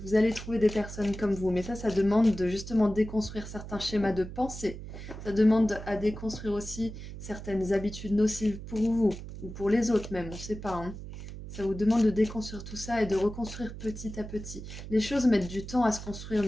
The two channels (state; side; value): noise; right; hum, 11 dB below the sound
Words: vous allez trouver des personnes comme vous, mais ça demande de justement déconstruire certains schémas de pensée. Ça demande à déconstruire aussi certaines habitudes nocives pour vous, ou pour les autres même, on ne sait pas, hein. Ça vous demande de déconstruire tout ça et de reconstruire petit à petit. Les choses mettent du temps à se construire,